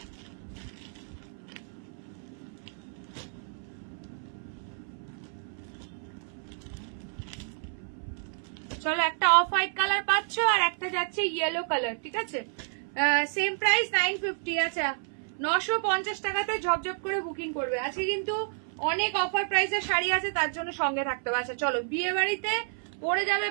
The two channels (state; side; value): silent; left; 58 dB below the other